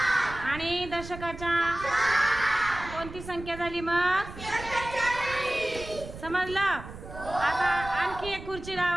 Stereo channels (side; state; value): right; noise; rumble, 13 dB below the sound